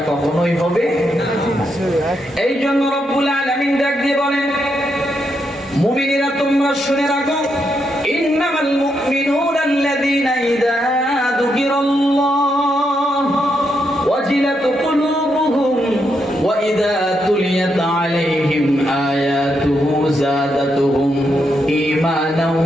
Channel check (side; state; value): both; normal; correlation 0.81